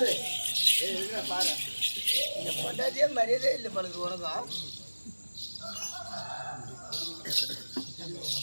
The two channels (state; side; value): inverted; both; correlation -1.00